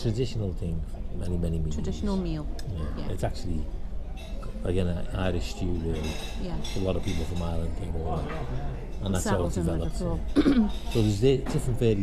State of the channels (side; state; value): both; identical; correlation 1.00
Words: traditional thing for many, many years. Traditional meal. Yeah. Yeah. It's actually, again, an Irish stew, really. Yeah. A lot of people from Ireland came over, and that's how it Settled in developed. Liverpool. So there's different